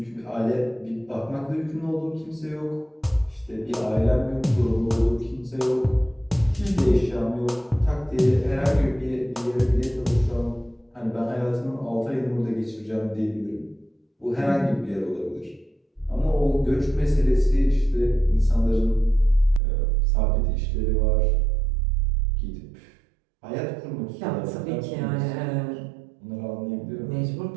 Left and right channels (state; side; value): drops out; left; at 19.6 s